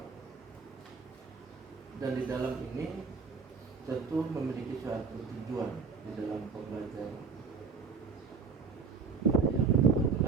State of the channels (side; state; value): left; quieter; 5.2 dB